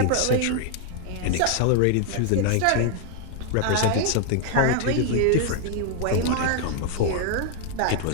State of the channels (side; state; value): both; different; correlation 0.00